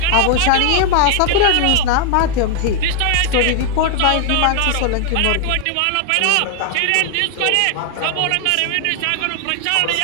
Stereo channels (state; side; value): different; both; correlation 0.00